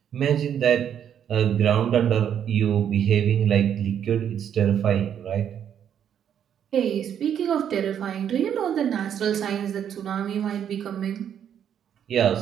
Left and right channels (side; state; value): left; quieter; 9.1 dB